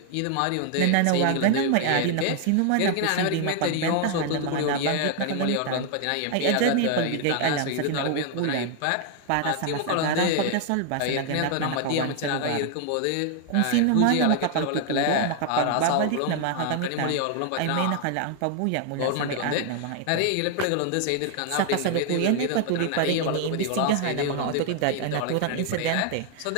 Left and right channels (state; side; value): different; both; correlation 0.00